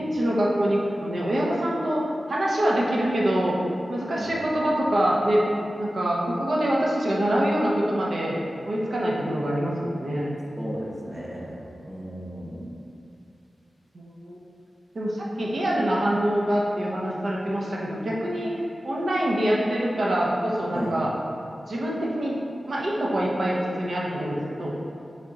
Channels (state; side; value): normal; both; correlation 0.94